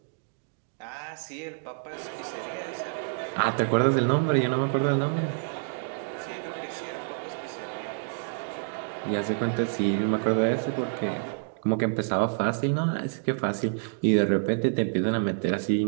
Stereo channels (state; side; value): silent; left; digital silence